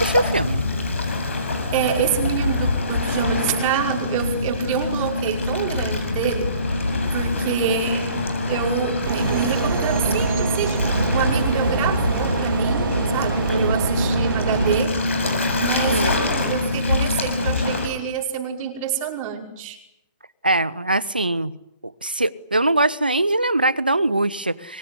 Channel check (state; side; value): inverted; both; correlation -0.56